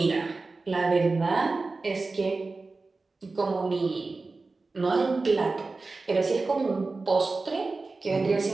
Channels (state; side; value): quieter; left; 3.7 dB